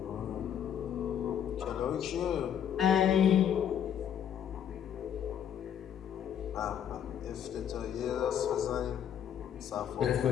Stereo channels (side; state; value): right; quieter; 9.2 dB